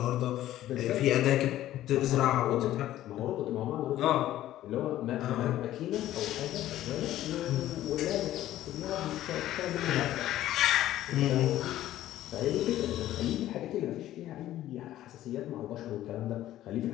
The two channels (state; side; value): quieter; right; 13.7 dB